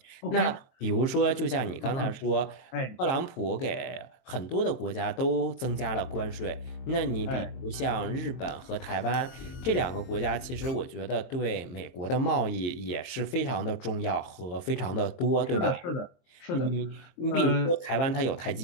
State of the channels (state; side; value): late; right; 23 ms